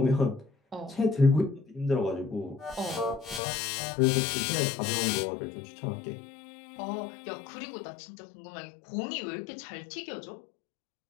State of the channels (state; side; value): drops out; right; at 3.4 s